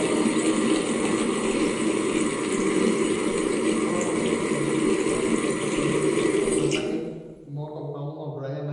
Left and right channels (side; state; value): both; identical; correlation 1.00